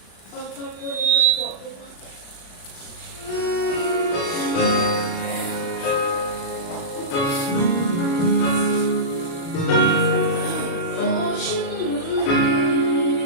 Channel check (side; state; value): right; late; 36 ms